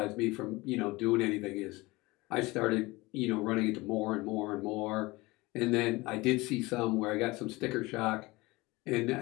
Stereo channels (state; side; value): quieter; right; 22.1 dB